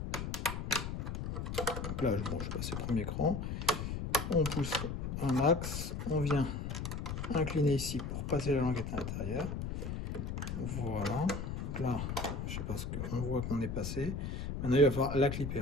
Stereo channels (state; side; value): noise; left; rumble, 4 dB below the sound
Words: Donc là, je passe le premier cran. On pousse un max. On vient incliner ici pour passer la languette à l'intérieur. Voilà. Donc là, je sais pas ce qu'on voit qu'on est passé. Maintenant, il va falloir la clipper.